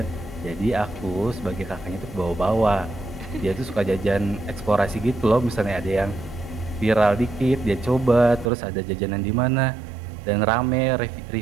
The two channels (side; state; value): left; drops out; at 8.5 s